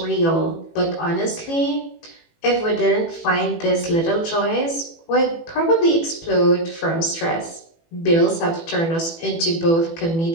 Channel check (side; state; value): right; late; 18 ms